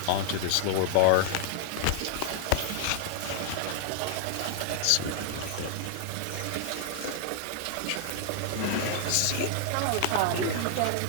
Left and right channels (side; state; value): both; different; correlation 0.00